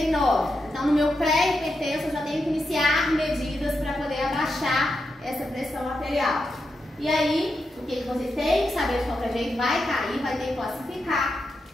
Então, no meu pré-hipertenso, eu já tenho que iniciar medidas para poder abaixar essa pressão arterial. E aí, o que vocês têm que saber de qualquer jeito? Vai cair, vai ter que classificar.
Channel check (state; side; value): normal; both; correlation 0.86